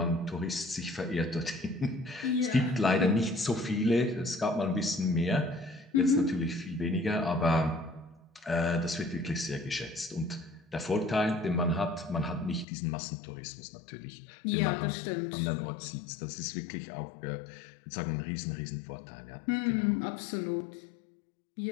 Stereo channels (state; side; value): drops out; right; at 12.7 s